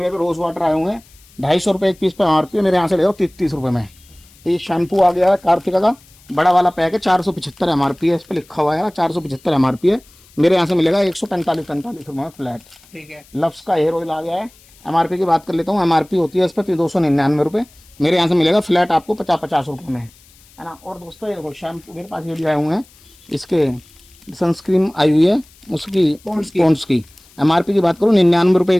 रोज वाटर आए हुए हैं 250 रुपये एक पीस पे MRP, मेरे यहाँ से ले जाओ 30 रुपये में। ये शैम्पू आ गया है कार्तिका का, बड़ा वाला पैक है, 475 MRP है, इस पर लिखा हुआ है 475 MRP है, मेरे यहाँ से मिलेगा 145 रुपये में फ्लैट। ठीक है। लफ्स का हेयर ऑयल आ गया है, MRP की बात कर लेता हूँ, MRP होती है इस पर 299 रुपये, मेरे यहाँ से मिलेगा फ्लैट आपको 50 रुपये में, है ना। और दोस्तों ये देखो शैम्पू मेरे पास ये भी आए हुए हैं, इसके सनस्क्रीन आई हुई है उसकी पॉन्ड्स की, MRP की बात करूँ 99 रुपये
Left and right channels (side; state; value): left; noise; hiss, 27 dB below the sound